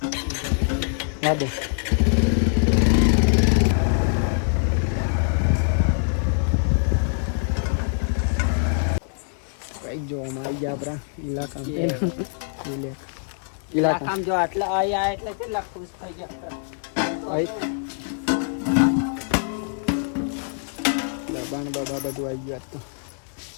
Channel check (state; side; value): silent; right; digital silence